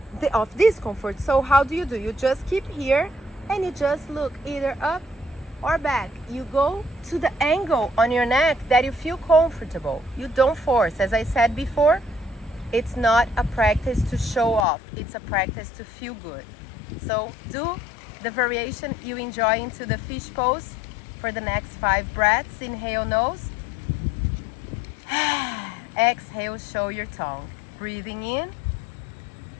of discomfort. So how do? You just keep here and you just look either up or back. You go to the angle on your neck that you feel comfortable. You don't force. As I said before, it's not a practice to show off. It's a practice to feel good. So do the variation you enjoy into the fish pose for the next 5 breaths. Inhale nose. Exhale, show your tongue. Breathing in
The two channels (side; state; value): right; drops out; at 14.7 s